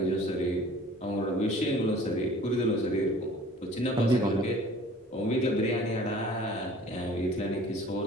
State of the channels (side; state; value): both; normal; correlation 0.49